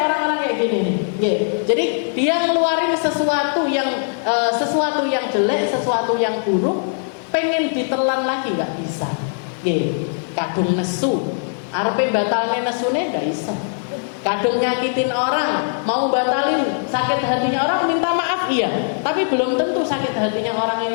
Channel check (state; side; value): silent; right; 66 dB below the other